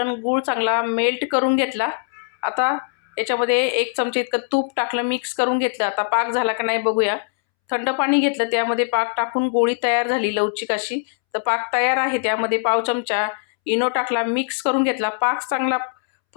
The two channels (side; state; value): right; silent; 65 dB below the other